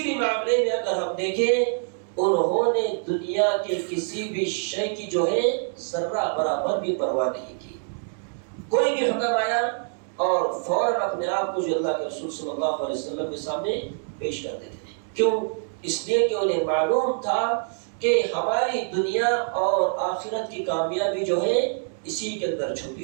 بھی معاملے میں اگر ہم دیکھیں انہوں نے دنیا کے کسی بھی شے کی جو ہے ذرہ برابر بھی پرواہ نہیں کی۔ کوئی بھی حکم آیا اور فوراً اپنے آپ کو جو اللہ کے رسول صلی اللہ علیہ وسلم کے سامنے پیش کر دیتے ہیں۔ کیوں؟ اس لیے کہ انہیں معلوم تھا کہ ہماری دنیا اور آخرت کی کامیابی جو ہے اسی کے اندر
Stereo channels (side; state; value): left; silent; digital silence